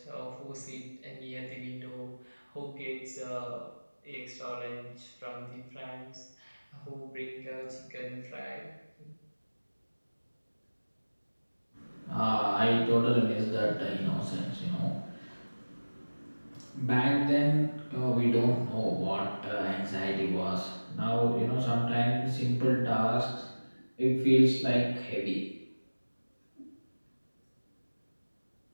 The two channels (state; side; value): inverted; both; correlation -1.00